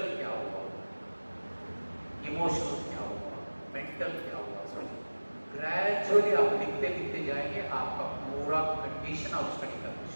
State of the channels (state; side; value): inverted; both; correlation -1.00